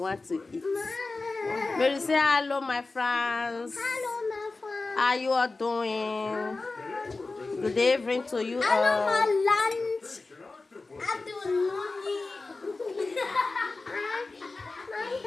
to eat. Mary say hello, my friends. Hello, my friend. How you all doing? Good evening to you Hello, all. my lunch.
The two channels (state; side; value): quieter; right; 3.6 dB